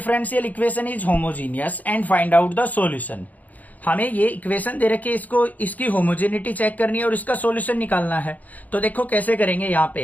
equation is homogeneous and find out the solution. हमें ये इक्वेशन दे रखी है, इसको इसकी होमोजेनिटी चेक करनी है और इसका सॉल्यूशन निकालना है। तो देखो कैसे करेंगे, यहाँ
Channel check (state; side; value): late; right; 0.079 ms